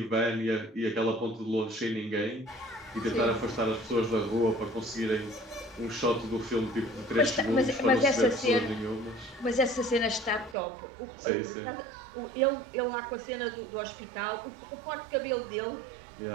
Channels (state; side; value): drops out; left; at 10.6 s